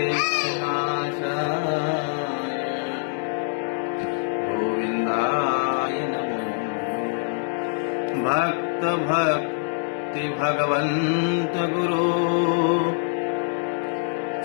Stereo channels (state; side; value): silent; right; 62 dB below the other